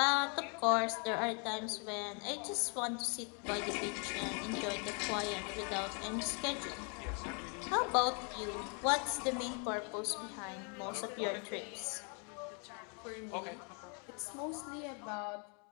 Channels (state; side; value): quieter; right; 37.9 dB